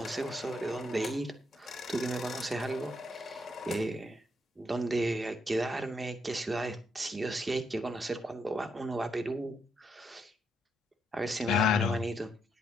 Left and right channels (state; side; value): normal; both; correlation 0.77